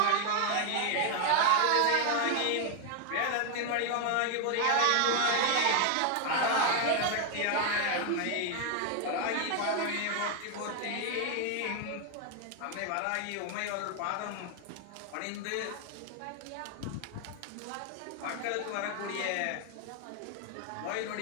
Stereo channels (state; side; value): different; both; correlation 0.00